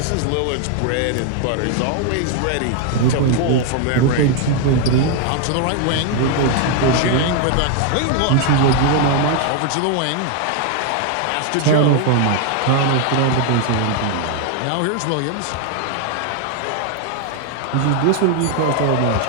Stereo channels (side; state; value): both; different; correlation 0.00